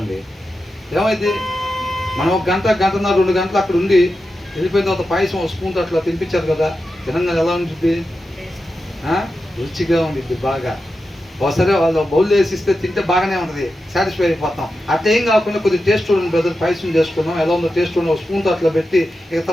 ఏమైంది? మనం 1 గంట, గంటన్నర, 2 గంటలు అక్కడ ఉండి వెళ్ళిపోయిన తర్వాత పాయసం ఒక స్పూన్తో అట్లా తినిపించారు కదా, తినంగా ఎలా ఉంటుంది? రుచిగా ఉండిద్ది బాగా. ఒకసారి వాళ్ళు బౌల్ వేసిస్తే తింటే బాగానే ఉంటుంది, సాటిస్ఫై అయిపోతాం. అట్లా ఏం కాకుండా కొద్దిగా టేస్ట్ చూడండి బ్రదర్, పాయసం చేసుకున్నాం, ఎలా ఉందో టేస్ట్ చూడండి, ఒక స్పూన్తో అట్లా పెట్టి ఇక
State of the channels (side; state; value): both; normal; correlation 0.90